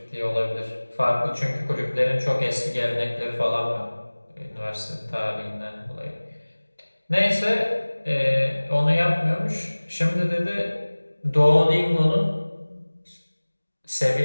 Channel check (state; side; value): inverted; both; correlation -1.00